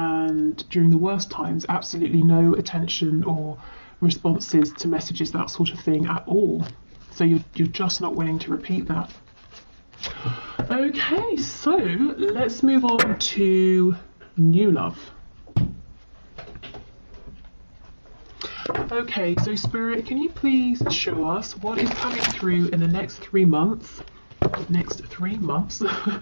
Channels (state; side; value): inverted; both; correlation -1.00